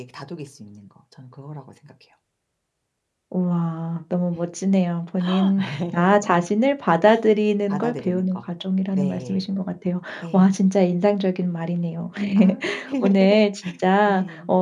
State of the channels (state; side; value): identical; both; correlation 1.00